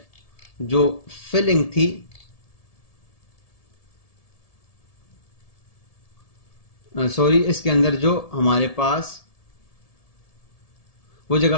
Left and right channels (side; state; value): right; late; 1.7 ms